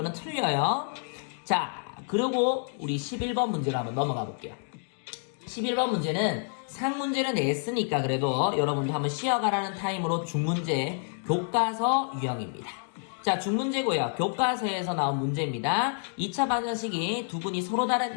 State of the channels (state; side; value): silent; right; 59 dB below the other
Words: 틀려요. 자, 그리고 우리 11번 문제로 한번 넘어가 볼게요. 11번 문제는 상문제는 냈으니까 그래도 여러분도 한번 쉬어가라는 타임으로 중문제 교과서 유형입니다. 자, 중문제고요. 교과서에서 나온 문제입니다. 2차 방정식이 두 분이 서로